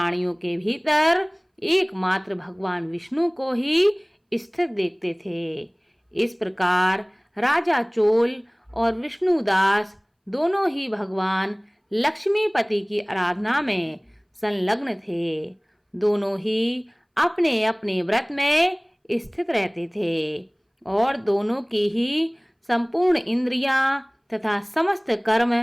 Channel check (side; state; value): both; identical; correlation 1.00